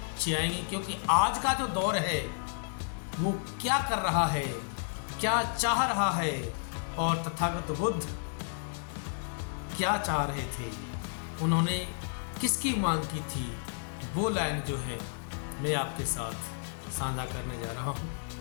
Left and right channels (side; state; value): right; silent; digital silence